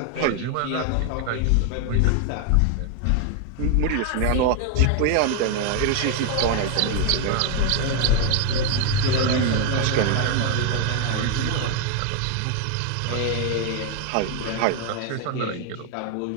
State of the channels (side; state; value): both; different; correlation 0.01